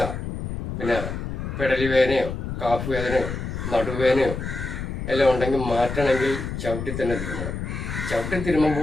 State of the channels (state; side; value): noise; left; rumble, 5 dB below the sound